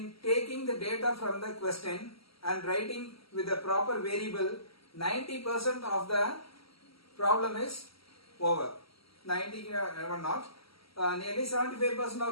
taking the data from the question and writing with the proper variable, 90% of the problem is over. 90 never not, nearly 75%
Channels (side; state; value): right; late; 0.75 ms